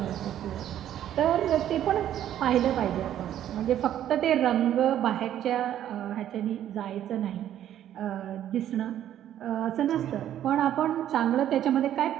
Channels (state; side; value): quieter; left; 11.3 dB